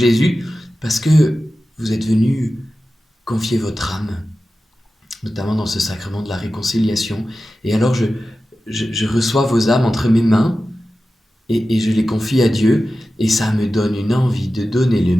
parce que vous êtes venus confier votre âme, notamment dans ce sacrement de la réconciliation. Et alors je reçois vos âmes entre mes mains et je les confie à Dieu, et ça me donne une envie de donner le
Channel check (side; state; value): both; normal; correlation 0.94